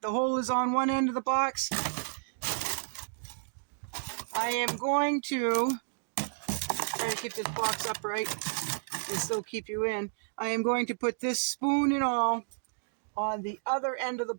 The hole is on one end of the box. I am going to try to keep this box upright and still keep you in. I am going to put this spoon and all on the other end of the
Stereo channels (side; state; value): left; silent; digital silence